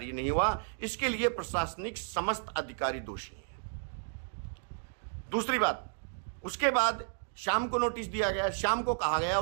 नहीं हुआ। इसके लिए प्रशासनिक समस्त अधिकारी दोषी हैं। दूसरी बात, उसके बाद शाम को नोटिस दिया गया, शाम को कहा गया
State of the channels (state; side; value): silent; left; digital silence